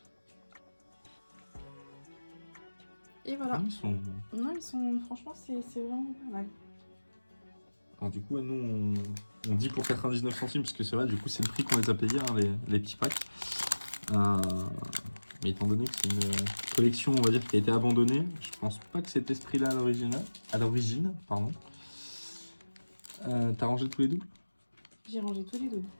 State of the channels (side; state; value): both; inverted; correlation -1.00